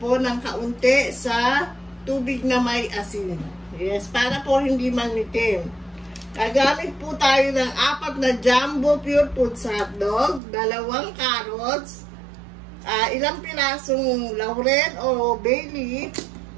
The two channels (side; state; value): left; drops out; at 10.4 s